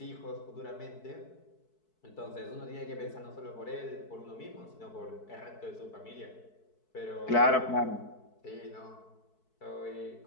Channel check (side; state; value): right; late; 4.6 ms